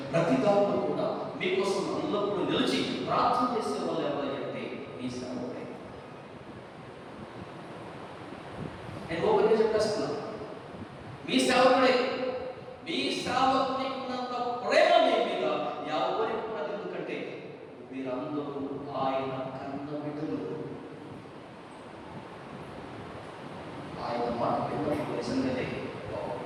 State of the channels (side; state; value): both; identical; correlation 1.00